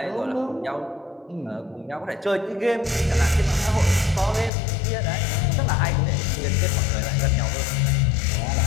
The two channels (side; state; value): right; drops out; at 4.5 s